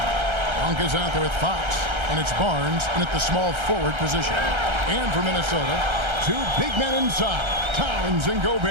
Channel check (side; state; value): left; late; 1.3 ms